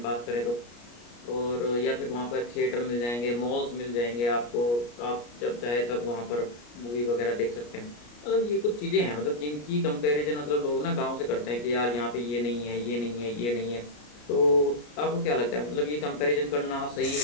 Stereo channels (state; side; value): late; right; 33 ms